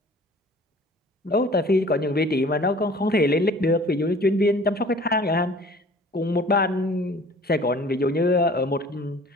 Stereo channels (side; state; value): both; normal; correlation 0.48